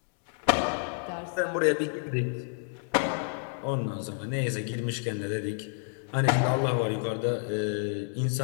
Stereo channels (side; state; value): right; silent; 58 dB below the other